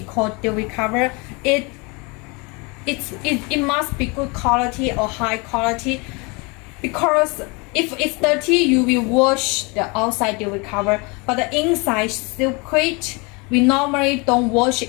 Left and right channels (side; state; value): right; quieter; 29.1 dB